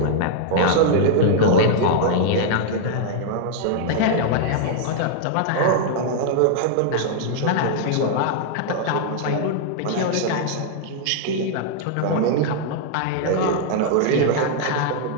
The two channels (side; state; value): both; different; correlation 0.00